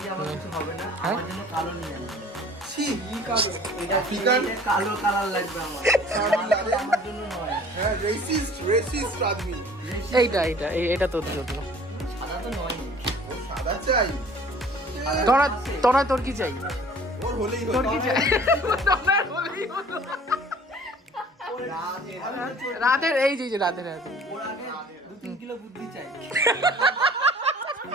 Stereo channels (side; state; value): both; normal; correlation 0.49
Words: আমার কিছু হবে না, হ্যাঁ? আমার জন্য কালো নিয়ে আনবে। ছি কি কালো? এটা ফিকার? এটা কালো কালার লাগবে আমার, আমার জন্য নয়। হ্যাঁ রেসিস্ট আদমি এটা তোর জন্য সাদা তো নয়, ও সাদা চাই তোরা তোর কি চাই ওর হলেই তোর হলো কি চাই রাতের এই যে রাতের ওর আগে 2-3 কিলো বুদ্ধি চাই।